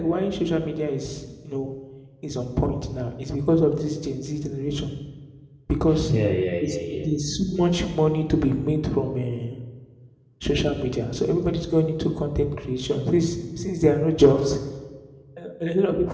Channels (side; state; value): both; identical; correlation 1.00